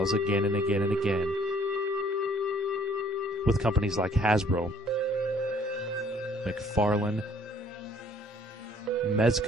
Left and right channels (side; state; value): both; normal; correlation 0.59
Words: again and again and again, with companies like Hasbro, McFarlane,